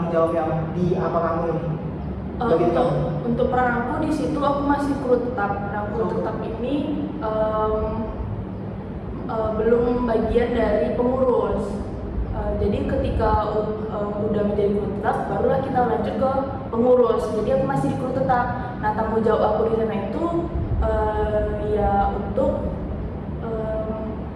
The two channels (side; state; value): both; identical; correlation 1.00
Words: jawab yang di apa kamu ini? Untuk peran aku di situ aku masih kru tetap. Nah, kru tetap ini belum bagian dari pengurus. Jadi ketika udah menjadi kru tetap, barulah kita lanjut ke pengurus. Jadi aku masih di kru tetap. Nah, tanggung jawab aku di sana itu ya untuk